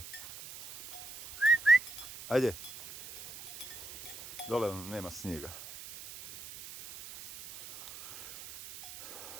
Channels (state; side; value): noise; right; hiss, 14 dB below the sound